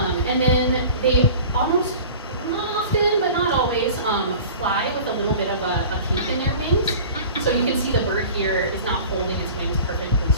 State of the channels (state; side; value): inverted; both; correlation -0.40